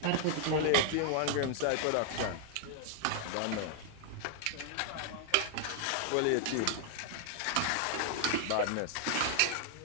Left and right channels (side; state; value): both; different; correlation 0.00